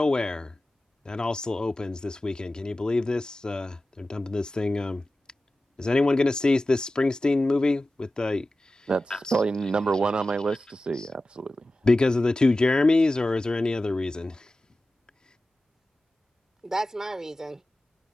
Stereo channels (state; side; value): normal; both; correlation 0.95